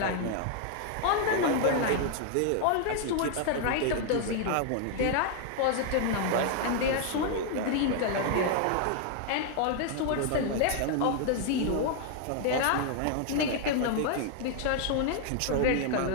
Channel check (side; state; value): both; different; correlation 0.00